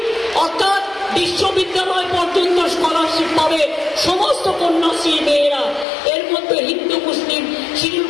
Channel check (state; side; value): drops out; right; at 5.9 s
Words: অর্থাৎ বিশ্ববিদ্যালয় পর্যন্ত স্কলারশিপ পাবে সমস্ত কন্যাশ্রী মেয়েরা। এর মধ্যে হিন্দু, মুসলিম, শিডিউল